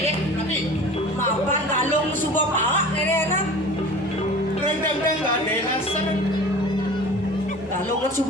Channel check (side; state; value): both; normal; correlation 0.40